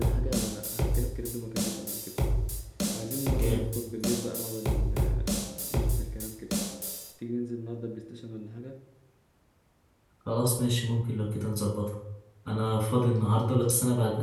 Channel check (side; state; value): both; identical; correlation 1.00